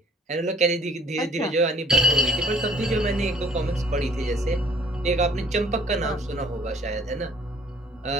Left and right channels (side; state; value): both; normal; correlation 0.57